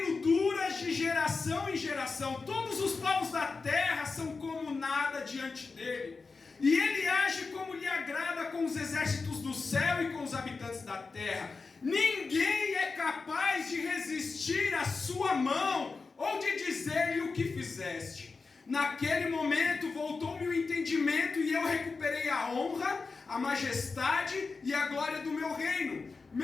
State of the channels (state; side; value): quieter; right; 4.3 dB